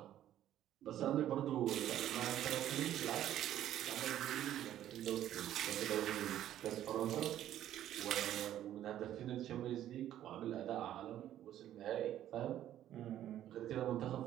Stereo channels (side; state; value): left; quieter; 12.0 dB